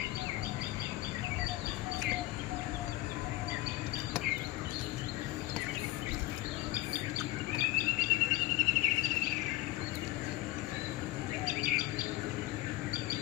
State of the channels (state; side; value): quieter; right; 17.9 dB